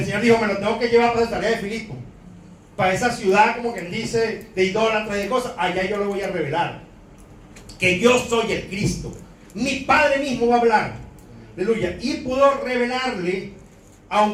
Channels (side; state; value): both; identical; correlation 1.00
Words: Señor dijo, me lo tengo que llevar para Cesarea de Filipo, para esa ciudad, como quien dice, de idólatras y de cosas. Allá yo le voy a revelar que yo soy el Cristo. Mi Padre mismo va a hablar. Aleluya. Y pudo revelarle,